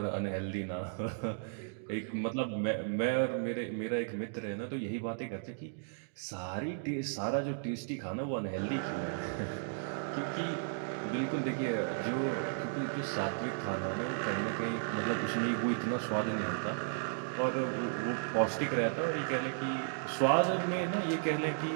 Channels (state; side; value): silent; left; digital silence